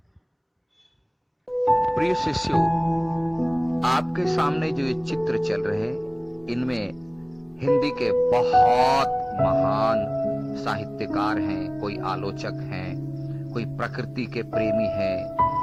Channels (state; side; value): identical; both; correlation 1.00